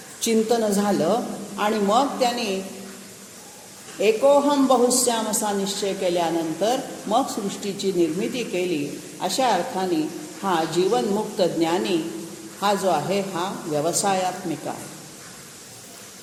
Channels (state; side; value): identical; both; correlation 1.00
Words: चिंतन झालं आणि मग त्यांनी एकोहम बहुश्याम असा निश्चय केल्यानंतर मग सृष्टीची निर्मिती केली. अशा अर्थाने हा जीवनमुक्त ज्ञानी हा जो आहे हा व्यवसायात्मिका.